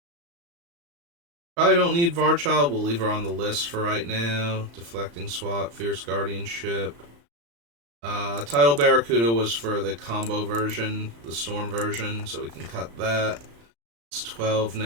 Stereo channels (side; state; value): left; late; 35 ms